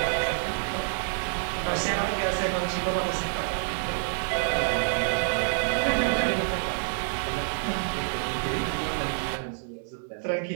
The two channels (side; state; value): left; silent; digital silence